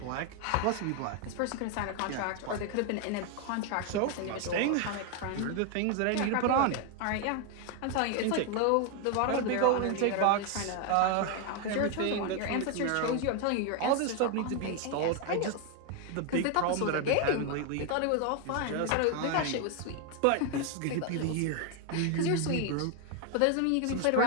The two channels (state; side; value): different; both; correlation 0.01